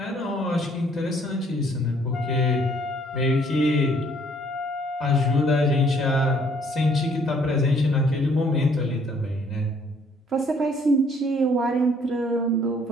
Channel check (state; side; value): normal; both; correlation 0.62